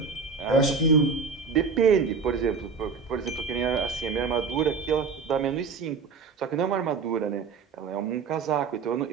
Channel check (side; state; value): left; quieter; 5.1 dB